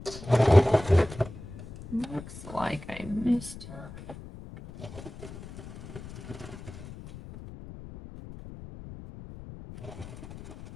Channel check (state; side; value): noise; left; rumble, 14 dB below the sound